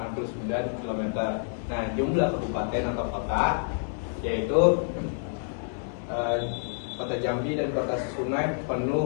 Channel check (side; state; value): right; silent; 59 dB below the other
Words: km. Nah, jumlah kabupaten atau kota yaitu kota Jambi dan kota Sungai